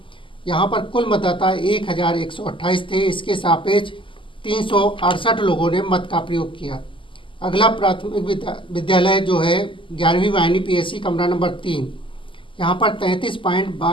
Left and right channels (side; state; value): right; late; 0.25 ms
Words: यहाँ पर कुल मतदाता 1128 थे। इसके सापेक्ष 368 लोगों ने मत का प्रयोग किया। अगला प्राथमिक विद्यालय जो है 11वीं वाहिनी पीएससी कमरा नंबर 3। यहाँ पर